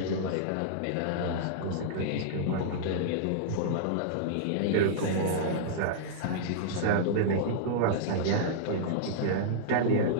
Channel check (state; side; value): different; both; correlation -0.02